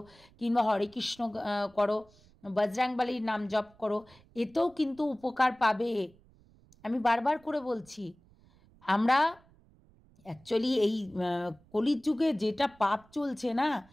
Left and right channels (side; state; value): right; noise; rumble, 28 dB below the sound